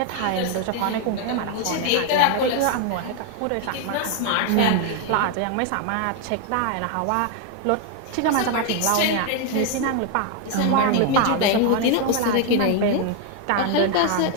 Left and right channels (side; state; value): both; different; correlation 0.01